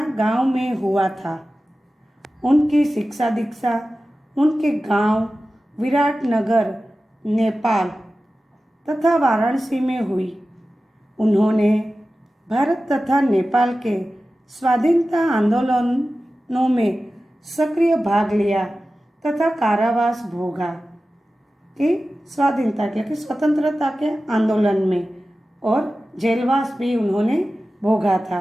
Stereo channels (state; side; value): normal; both; correlation 0.95